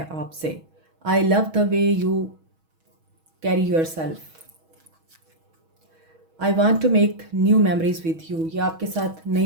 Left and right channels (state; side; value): late; left; 6.2 ms